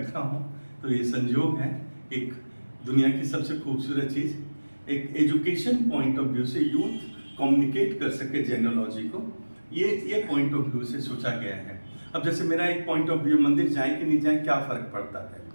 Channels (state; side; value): inverted; both; correlation -1.00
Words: हूँ। तो ये संयोग है, एक दुनिया की सबसे खूबसूरत चीज़, एक एजुकेशन पॉइंट ऑफ व्यू से यूथ कम्युनिकेट कर सके जेनोलॉजी को, ये पॉइंट ऑफ व्यू से सोचा गया है। अब जैसे मेरा एक पॉइंट ऑफ व्यू, मंदिर जाए कि नहीं जाए क्या फर्क पड़ता है,